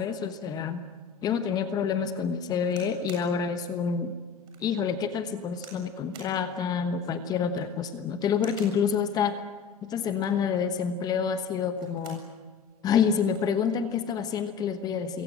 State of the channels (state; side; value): quieter; right; 6.4 dB